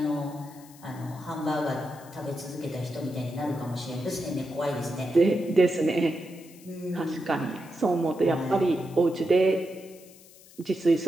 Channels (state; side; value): noise; left; hiss, 23 dB below the sound